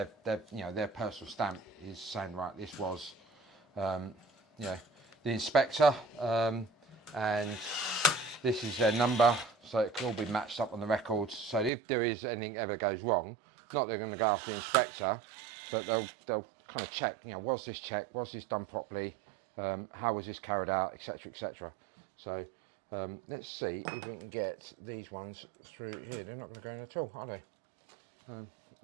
their personal stamp is saying, right, this was the inspector, and this is their number, so it can all be matched up on the records. So if there is anything ever goes wrong, not they're going to go after the inspector, but they'll kind of check, you know, was this checked, was this done properly, how was this carried out, etc., etc. So let's see if we can get these ones through here. They're not going to go in at all, are they?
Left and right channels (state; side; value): drops out; left; at 11.7 s